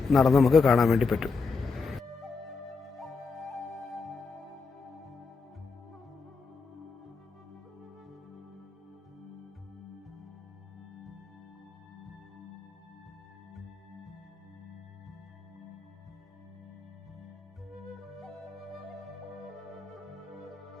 നടന്ന് നമുക്ക് കാണാൻ വേണ്ടി പറ്റും.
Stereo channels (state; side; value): quieter; right; 4.6 dB